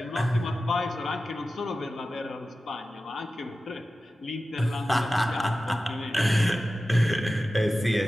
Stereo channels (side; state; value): both; normal; correlation 0.94